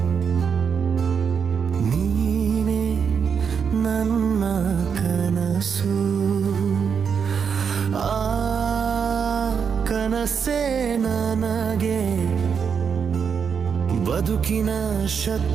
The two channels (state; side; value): quieter; left; 6.6 dB